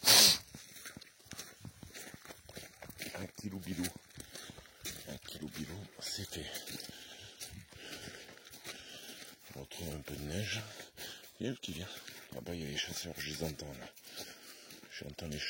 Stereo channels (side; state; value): both; identical; correlation 1.00